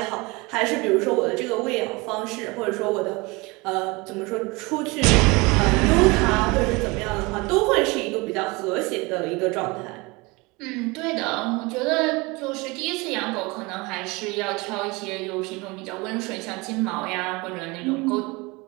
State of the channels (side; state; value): left; quieter; 25.2 dB